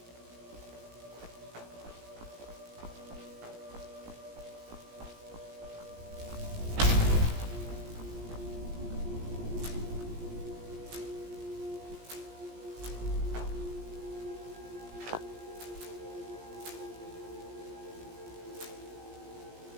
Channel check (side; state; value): left; late; 17 ms